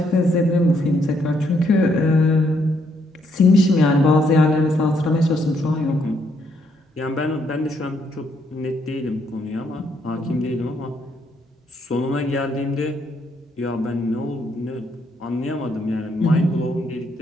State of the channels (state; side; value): normal; both; correlation 0.73